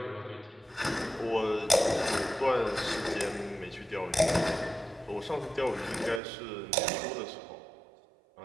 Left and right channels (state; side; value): drops out; left; at 6.2 s